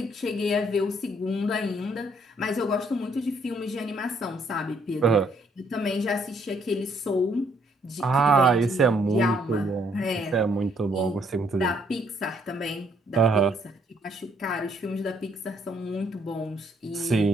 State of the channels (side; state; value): both; normal; correlation 0.68